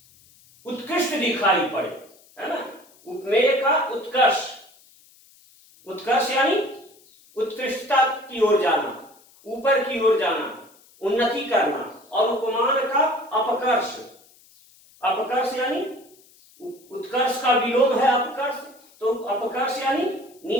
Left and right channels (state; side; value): noise; left; hiss, 28 dB below the sound